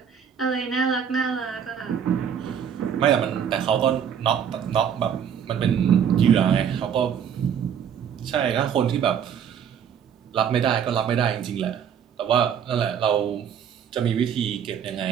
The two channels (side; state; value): left; quieter; 8.2 dB